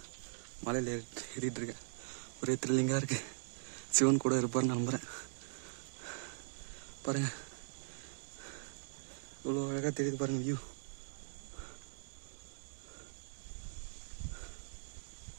மலையில் ஏறிட்டு இருக்கேன். ஒரே த்ரில்லிங்காக இருக்கு. சிவன் கூட இருப்பார்னு நம்புகிறேன். பாருங்க, இவ்வளோ அழகாக தெரியுது பாருங்க வியூ.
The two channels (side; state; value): left; silent; digital silence